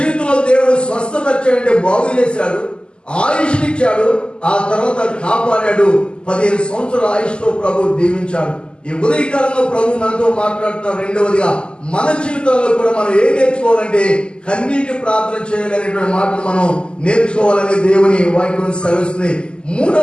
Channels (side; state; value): right; late; 0.050 ms